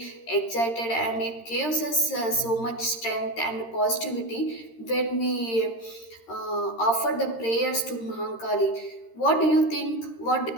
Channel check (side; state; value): right; late; 13 ms